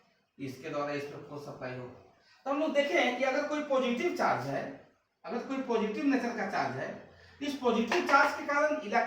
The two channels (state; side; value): identical; both; correlation 1.00